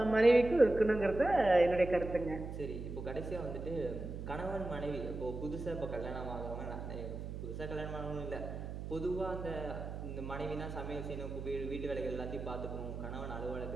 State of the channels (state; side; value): noise; right; hum, 7 dB below the sound